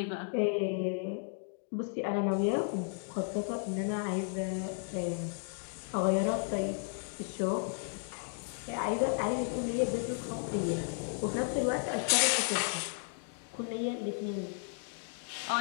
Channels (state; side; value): silent; right; 55 dB below the other